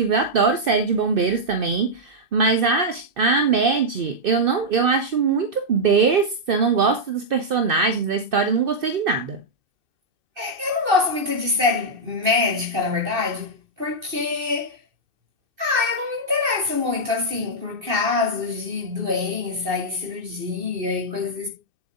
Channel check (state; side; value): late; left; 2.6 ms